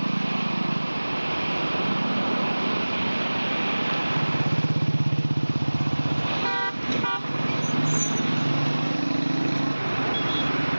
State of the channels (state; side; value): inverted; both; correlation -1.00